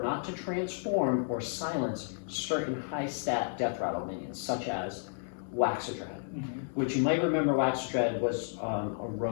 not to transform or silence certain high stat death rattle minions, such as Waxadread, which you might remember Waxadread was a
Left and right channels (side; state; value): right; silent; digital silence